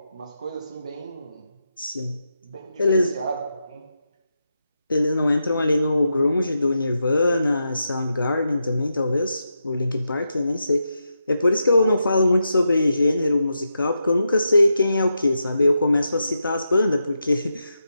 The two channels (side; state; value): both; inverted; correlation -0.86